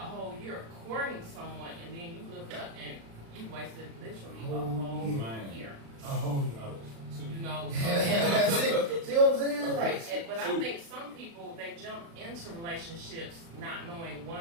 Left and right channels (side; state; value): left; late; 36 ms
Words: year courting someone, and then you look up and you wasted literally a whole year. A whole year. That's it. See what I'm saying? Right. But I think some people, they jump into relationships not knowing,